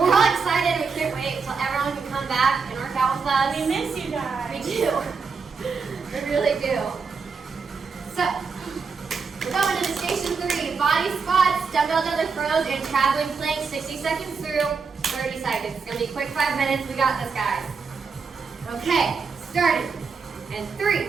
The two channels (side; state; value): left; quieter; 5.1 dB